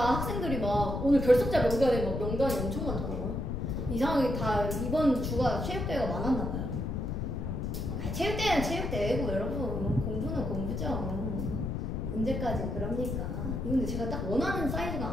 학생들이 막 오늘 결석자 명단에 막 명단이 엄청 많더라고요. 이상하게 다 이번 주가 체육대회가 많았나 봐요. 체육대회는 체육대회고 여러분 공부는 공부죠. 언제까지 그럽니까? 이거 근데 제가 딱 원하는 사이즈가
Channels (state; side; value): noise; left; rumble, 2 dB below the sound